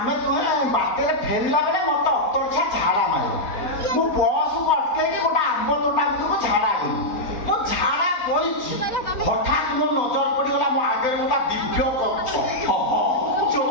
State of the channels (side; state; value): right; late; 3.8 ms